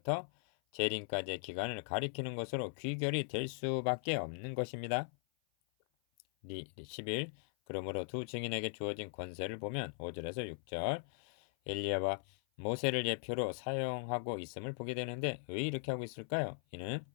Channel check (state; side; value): silent; right; 52 dB below the other